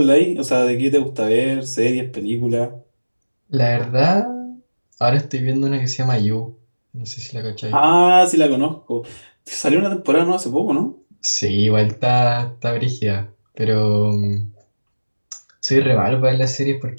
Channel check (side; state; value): both; inverted; correlation -1.00